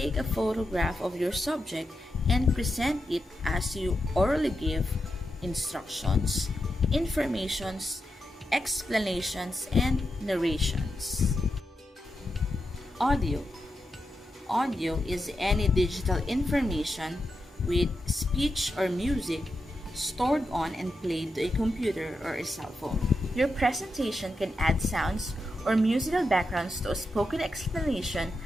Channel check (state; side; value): normal; both; correlation 0.87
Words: a photograph of your subject and present it as you orally give instructions, informations, explanations, and narrations. Audio. Audio is any digital information with speech or music stored on and played to a computer or a cell phone. Your presentation can add sounds or musical backgrounds to a spoken explanation